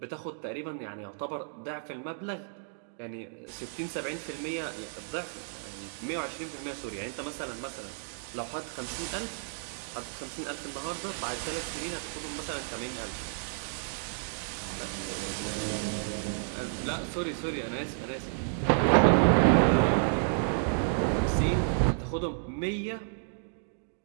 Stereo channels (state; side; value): silent; left; digital silence